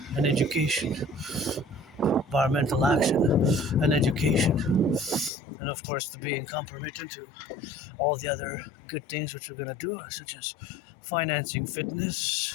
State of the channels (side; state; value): right; drops out; at 5.3 s